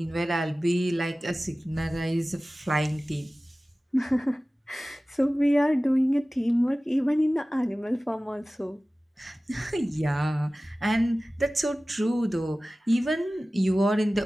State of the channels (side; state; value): both; normal; correlation 0.97